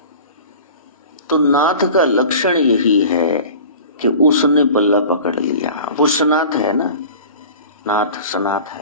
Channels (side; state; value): both; inverted; correlation -0.39